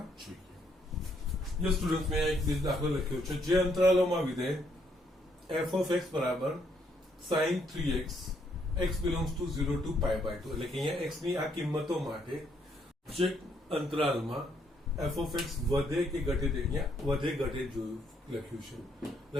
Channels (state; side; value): normal; both; correlation 0.72